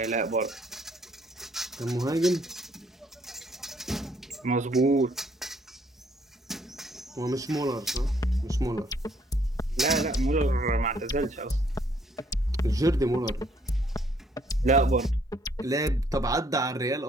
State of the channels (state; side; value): normal; both; correlation 0.66